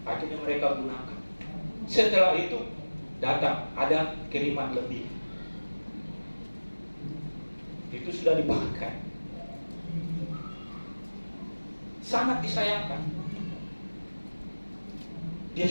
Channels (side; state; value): both; inverted; correlation -1.00